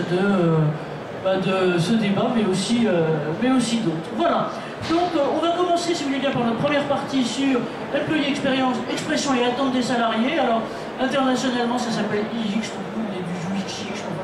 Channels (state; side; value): identical; both; correlation 1.00